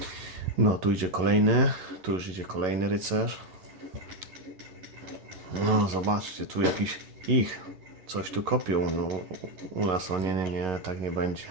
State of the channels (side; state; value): left; late; 11 ms